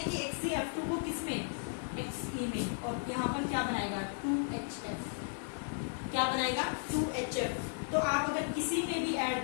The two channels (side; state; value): right; silent; digital silence